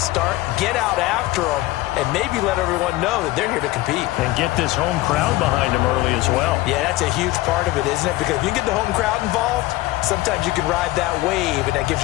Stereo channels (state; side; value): quieter; right; 18.0 dB